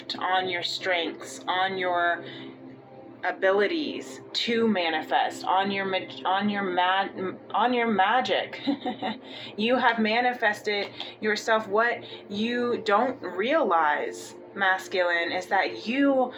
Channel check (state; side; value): identical; both; correlation 1.00